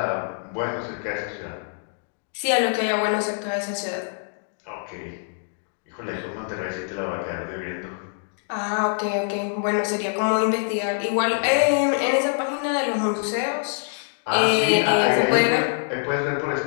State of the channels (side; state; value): right; silent; digital silence